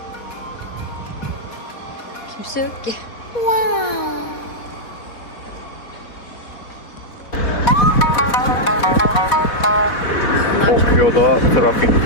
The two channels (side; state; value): right; late; 4.1 ms